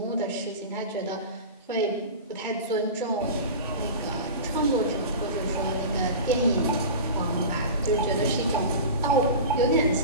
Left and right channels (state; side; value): inverted; both; correlation -0.31